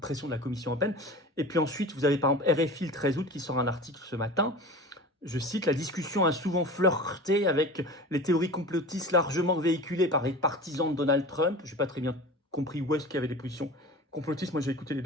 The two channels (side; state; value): both; normal; correlation 0.35